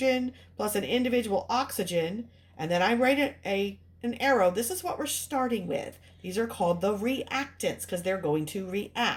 plus an individual oxygen, and then I write an arrow, this is what we're starting with. These are called the reactants because they're going to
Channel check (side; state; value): both; identical; correlation 1.00